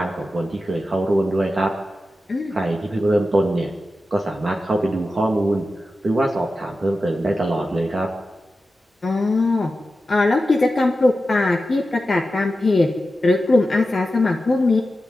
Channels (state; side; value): normal; both; correlation 0.92